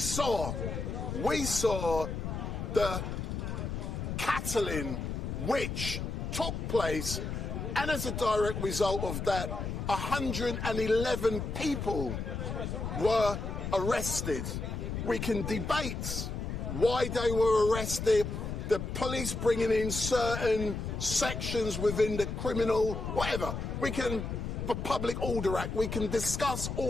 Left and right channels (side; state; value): left; noise; rumble, 4 dB below the sound